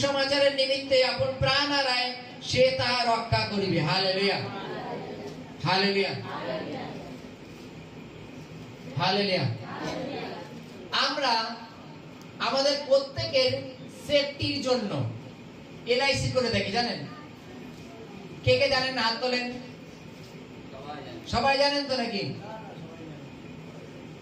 নিমিত্তে আপন প্রাণ হারায় সে তাহা রক্ষা করিবে। Hallelujah, hallelujah, hallelujah. আমরা আমাদের প্রত্যেকের সেফটির জন্য এলআইসি করে থাকি, জানেন? কে কে জানেন? হাত তোলেন। সবাই জানেন তো নাকি?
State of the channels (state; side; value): identical; both; correlation 1.00